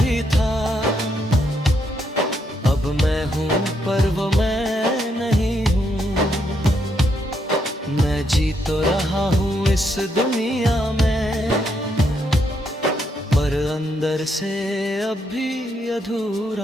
था, अब मैं हूँ पर वो मैं नहीं हूँ। मैं जी तो रहा हूँ इस दुनिया में, पर अंदर से अब भी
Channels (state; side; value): normal; both; correlation 0.77